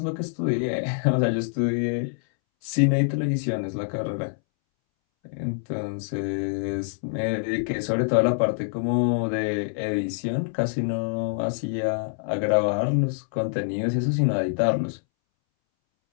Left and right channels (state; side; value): silent; right; 61 dB below the other